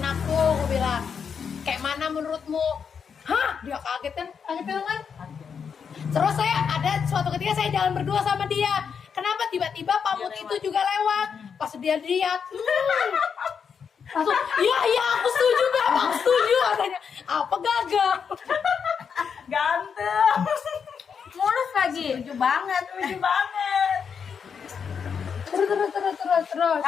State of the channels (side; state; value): right; quieter; 6.6 dB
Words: aku bilang. Kayak mana menurutmu? Hah? Dia kaget kan? Kan? Terus saya ada suatu ketika saya jalan berdua sama dia. Kenapa tiba-tiba Pamut itu juga lewat? Pas dia lihat, langsung, iya aku setuju Beb, aku setuju katanya. Apa gagal? Ganteng. Mulus lagi. Setuju banget. Lucu banget. Terus.